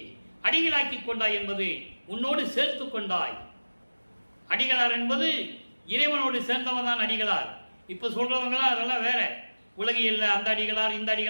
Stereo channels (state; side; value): inverted; both; correlation -1.00